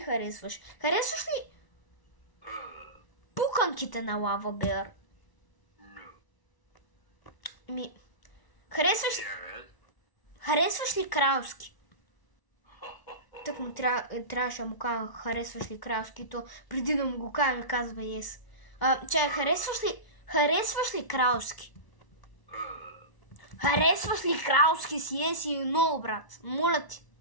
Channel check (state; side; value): late; right; 1.0 ms